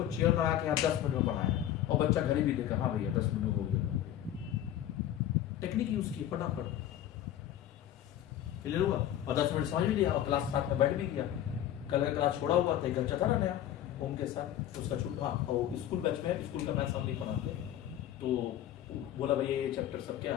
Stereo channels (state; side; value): quieter; right; 11.7 dB